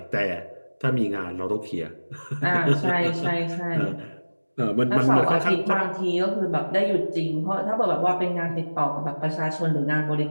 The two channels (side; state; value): both; inverted; correlation -1.00